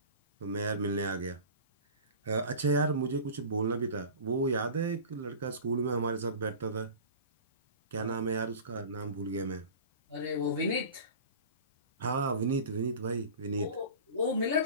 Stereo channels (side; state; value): both; inverted; correlation -0.37